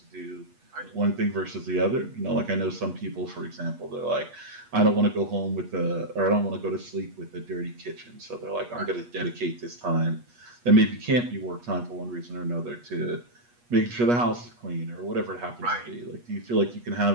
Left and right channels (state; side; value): late; left; 8.3 ms